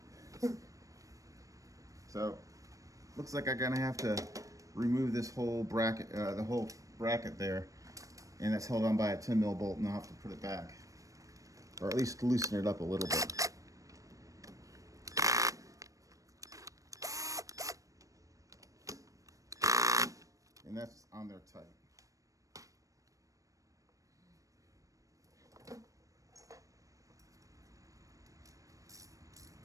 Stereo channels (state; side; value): late; left; 0.16 ms